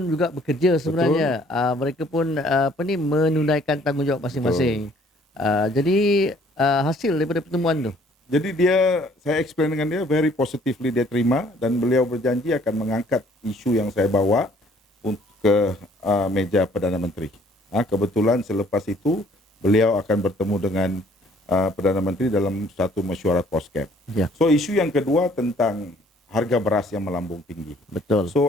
juga bekerja sebenarnya. Mereka pun menunaikan tanggungjawab masing-masing. Jadi hasil daripada pertemuan tu. Jadi saya explain dengan dia, very positively dia terima dan beliau berjanji akan mengangkat isu yang saya bawa ke meja Perdana Menteri. Kebetulan selepas itu beliau akan bertemu dengan Perdana Menteri dalam satu mesyuarat POSCAP. So isu yang kedua tentang harga beras yang melambung tinggi. Betul.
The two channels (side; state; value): both; normal; correlation 0.59